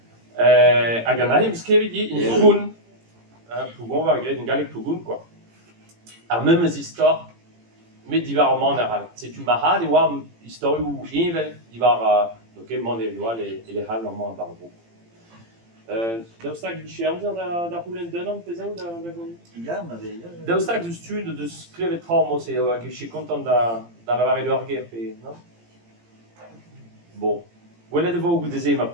Hag an ahem skrevet di, in pougoun, pougoun va gret, in galek pougoun, quoi. Ar memes istor, met divar ar man ar setu ma hal e oa historiou evel divar, ok, man e oa le hal ar man bar bo. Daoustag biche amzer da roulen denan pezao da gant? Ya, ma vez. Daoustag deus tud deus klevet tra mos e hag eche kontant da lavare d'or ger pe, non? Bon. Gwelet e vo goude ze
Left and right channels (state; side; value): late; left; 18 ms